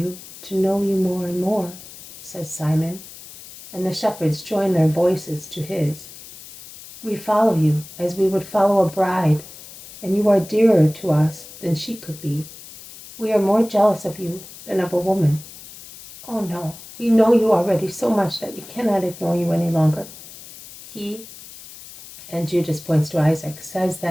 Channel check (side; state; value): left; noise; hiss, 17 dB below the sound